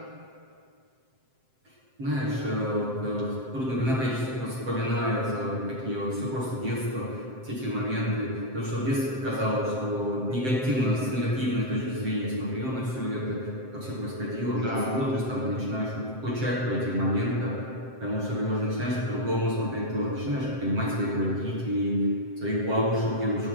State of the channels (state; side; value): late; left; 7.7 ms